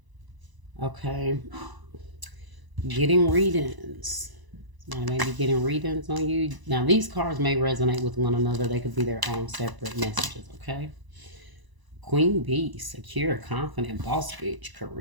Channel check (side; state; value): left; late; 1.0 ms